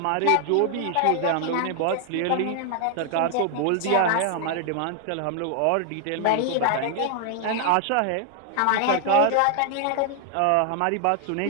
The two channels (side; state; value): both; different; correlation 0.00